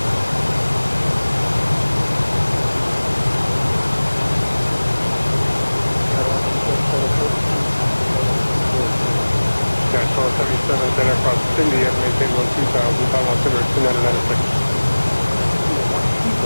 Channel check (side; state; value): both; inverted; correlation -1.00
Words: Dash 1277, then across Cindy at maintain 12000, final altimeter 2996.